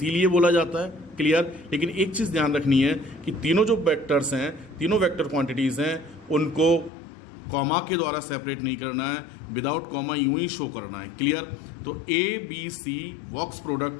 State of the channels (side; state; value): right; drops out; at 6.9 s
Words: बोला जाता है, क्लियर। लेकिन एक चीज ध्यान रखनी है कि तीनों जो वेक्टर्स हैं, तीनों वेक्टर क्वांटिटीज हैं, उनको कॉमा के द्वारा सेपरेट नहीं करना है, विदाउट कॉमा यूं ही शो करना है, क्लियर। तो A B C box